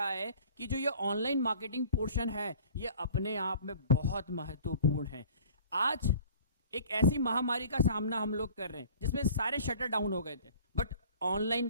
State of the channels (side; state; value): both; inverted; correlation -0.47